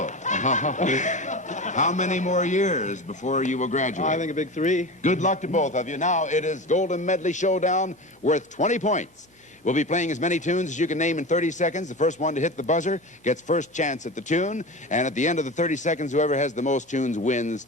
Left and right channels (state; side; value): normal; both; correlation 0.28